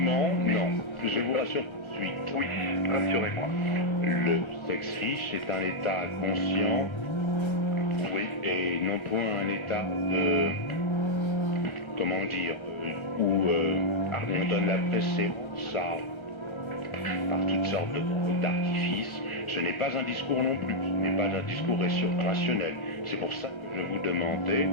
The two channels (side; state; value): right; late; 1.3 ms